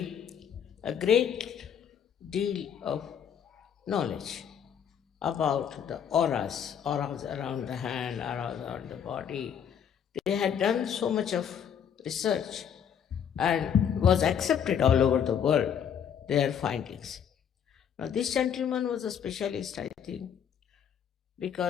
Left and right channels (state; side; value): quieter; right; 8.3 dB